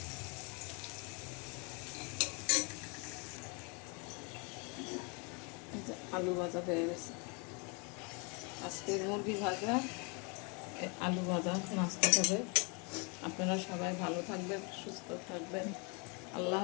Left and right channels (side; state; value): right; quieter; 33.3 dB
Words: আলু ভাজা হয়ে গেছে। আজকে মুরগি ভাজা, আলু ভাজা নাস্তা হবে। আপনারা সবাই ভালো থাকবেন, সুস্থ থাকবেন। আল্লাহ